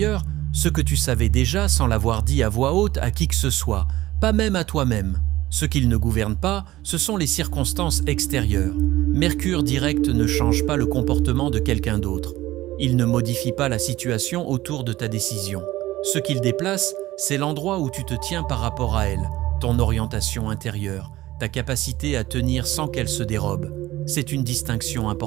ce que tu savais déjà sans l'avoir dit à voix haute à qui que ce soit, pas même à toi-même. Ce qu'il ne gouverne pas, ce sont les circonstances extérieures. Mercure direct ne change pas le comportement de quelqu'un d'autre. Il ne modifie pas la situation autour de ta décision. Ce qu'il déplace, c'est l'endroit où tu te tiens par rapport à elle, ton orientation intérieure, ta capacité à tenir sans qu'elle se dérobe. C'est une distinction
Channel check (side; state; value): left; quieter; 16.5 dB